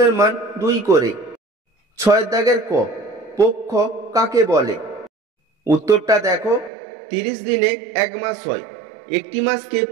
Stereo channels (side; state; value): left; drops out; at 6.7 s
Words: মান 2 করে। 6 দাগের ক, পক্ষ কাকে বলে? উত্তরটা দেখো, 30 দিনে 1 মাস হয়। একটি মাসকে